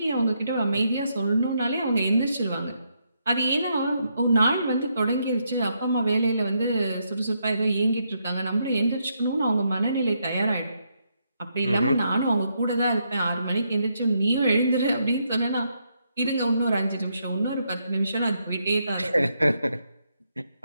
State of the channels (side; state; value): both; inverted; correlation -0.78